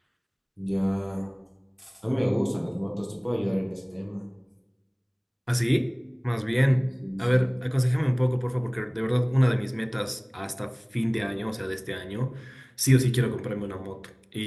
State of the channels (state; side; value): identical; both; correlation 1.00